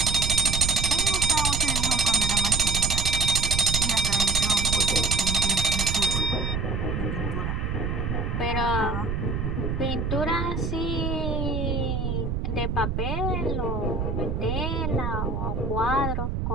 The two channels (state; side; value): noise; right; rumble, 1 dB below the sound